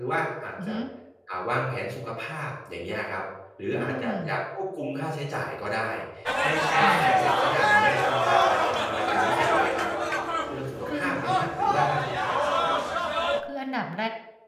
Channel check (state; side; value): identical; both; correlation 1.00